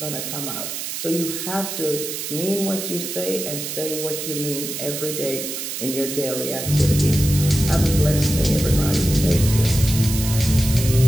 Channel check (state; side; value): noise; right; hiss, 5 dB below the sound